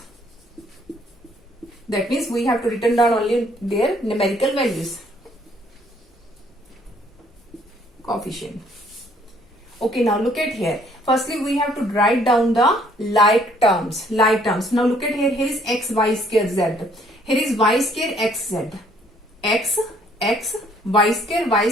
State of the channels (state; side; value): normal; both; correlation 0.63